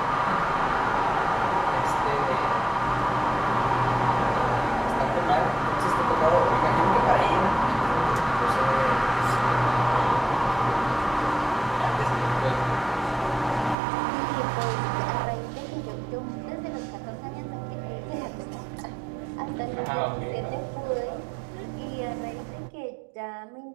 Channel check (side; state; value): left; drops out; at 13.8 s